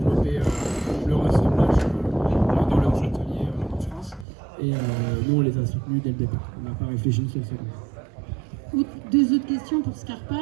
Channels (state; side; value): drops out; left; at 4.2 s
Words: le ressemblage dans leurs ateliers en France. Et nous, on les a soutenus dès le départ. On n'a pas réfléchi une seule seconde. Deux autres questions pour Scarpa,